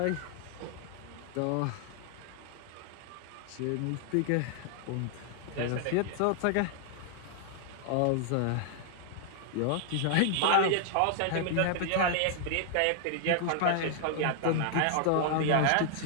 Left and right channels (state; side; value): different; both; correlation 0.00